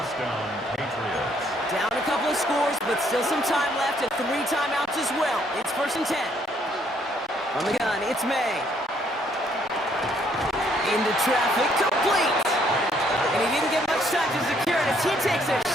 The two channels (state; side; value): normal; both; correlation 0.68